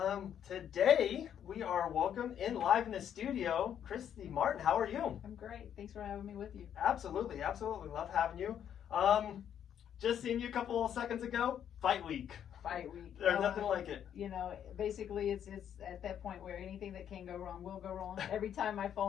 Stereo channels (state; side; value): quieter; right; 9.3 dB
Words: Today we are welcome in live in the studio, Christy Martin. How are you? I'm great. Thanks for having me with you. Absolutely. Love having you. Just seen you a couple of seconds ago. Fight week. Fight week. There's nothing like it. You know, basically it's at that point where anything that can go wrong will go wrong. Every time my